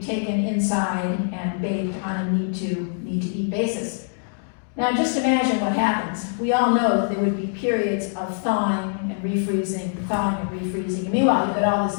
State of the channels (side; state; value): right; silent; digital silence